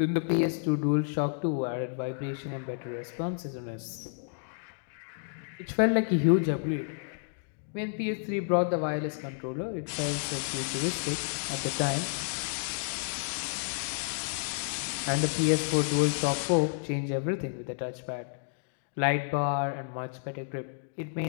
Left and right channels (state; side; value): silent; right; digital silence